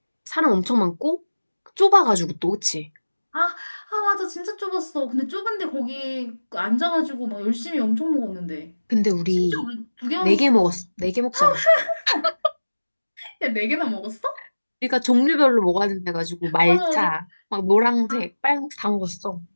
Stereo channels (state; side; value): inverted; both; correlation -1.00